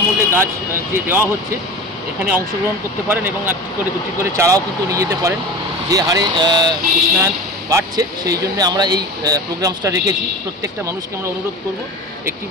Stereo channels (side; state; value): both; normal; correlation 0.32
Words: গাছ যে দেওয়া হচ্ছে এখানে অংশগ্রহণ করতে পারেন এবং একটি করে দুটি করে চারাও কিন্তু নিয়ে যেতে পারেন। যে হারে উষ্ণায়ন বাড়ছে সেই জন্য আমরা এই প্রোগ্রামসটা রেখেছি। প্রত্যেকটা মানুষকে আমরা অনুরোধ করব একটি